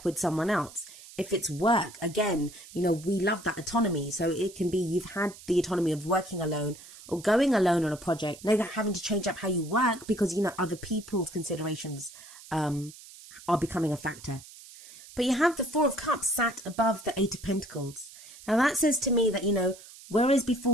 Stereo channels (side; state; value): right; noise; hiss, 18 dB below the sound